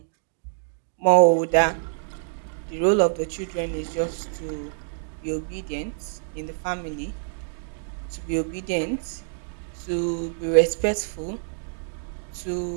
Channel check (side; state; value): left; silent; digital silence